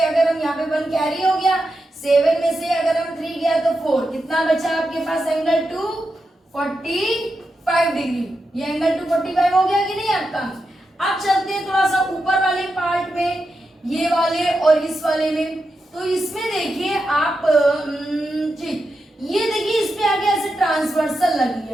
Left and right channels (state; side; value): normal; both; correlation 0.88